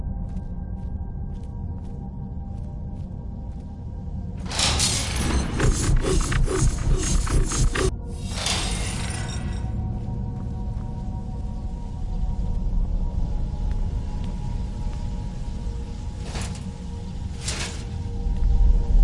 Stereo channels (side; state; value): both; identical; correlation 1.00